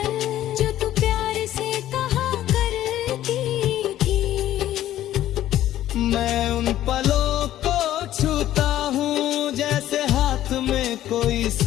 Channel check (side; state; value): right; quieter; 13.0 dB